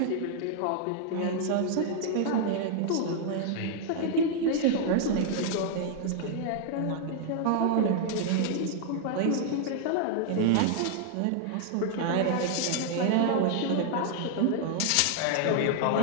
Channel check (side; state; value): both; different; correlation 0.00